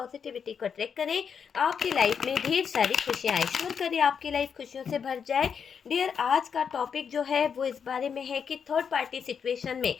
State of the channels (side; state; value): right; quieter; 6.8 dB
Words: को अट्रैक्ट करें, आपकी लाइफ में ढेर सारी खुशियाँ आए, श्योर करें आपकी लाइफ खुशियों से भर जाए। डियर, आज का टॉपिक जो है वो इस बारे में है कि थर्ड पार्टी सिचुएशन में